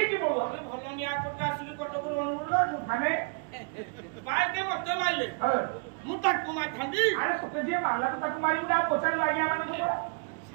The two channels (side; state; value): left; quieter; 36.8 dB